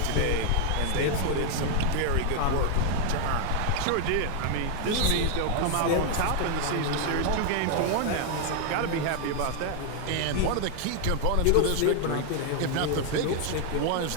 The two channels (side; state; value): both; different; correlation 0.00